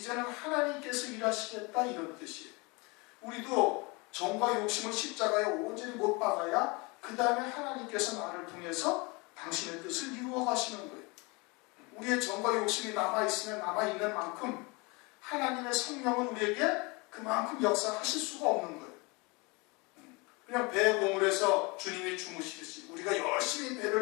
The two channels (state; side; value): quieter; right; 27.5 dB